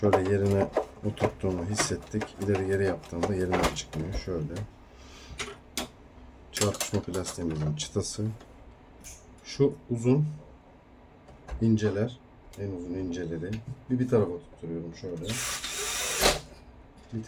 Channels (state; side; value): identical; both; correlation 1.00